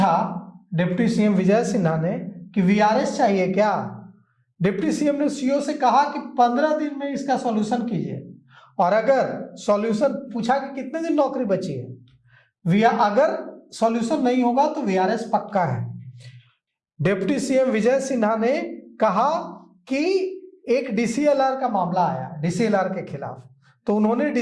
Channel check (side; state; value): both; identical; correlation 1.00